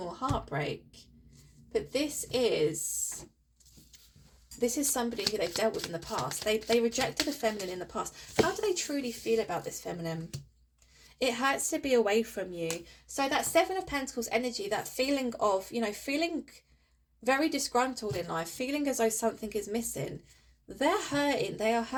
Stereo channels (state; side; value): identical; both; correlation 1.00